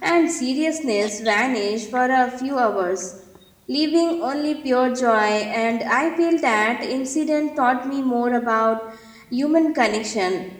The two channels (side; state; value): both; identical; correlation 1.00